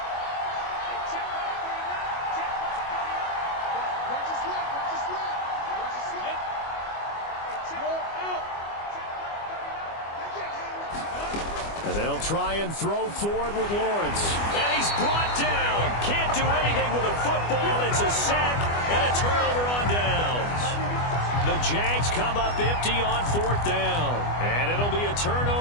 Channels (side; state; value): right; late; 25 ms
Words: And they'll try and throw for it with Lawrence. And he's brought down. Can't do anything with a football. It's a sack and a turnover on downs. The Jags come up empty on 4th down. And it'll be a